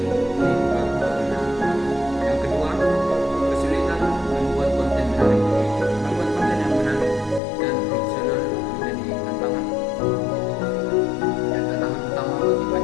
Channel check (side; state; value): right; drops out; at 7.4 s